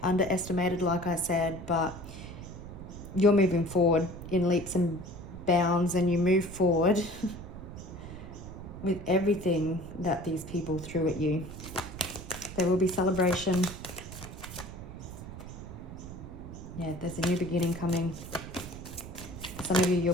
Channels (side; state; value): right; noise; rumble, 12 dB below the sound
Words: like I said, but you're moving forward in leaps and bounds, and you move forward with everything that these people threw at you. There will be celebration. Yeah, there's a new beginning coming. Some of you, you'll